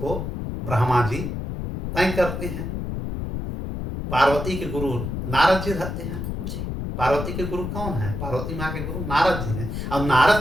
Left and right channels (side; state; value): left; noise; rumble, 4 dB below the sound